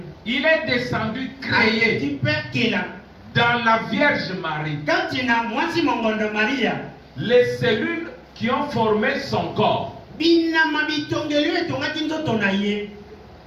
il est descendu, créé dans la Vierge Marie. Les cellules qui ont formé son corps.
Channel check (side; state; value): both; identical; correlation 1.00